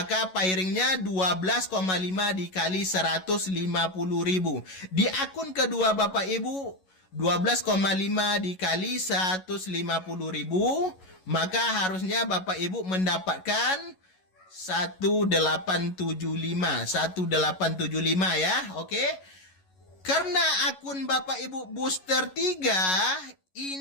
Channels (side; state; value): right; late; 11 ms